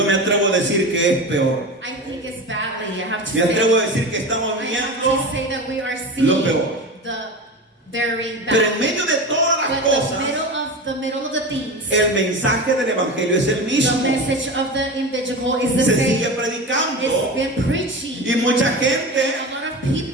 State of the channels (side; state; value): both; normal; correlation 0.27